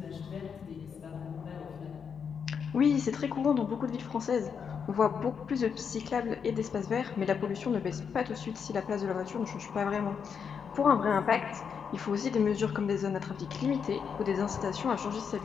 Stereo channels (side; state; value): right; quieter; 6.7 dB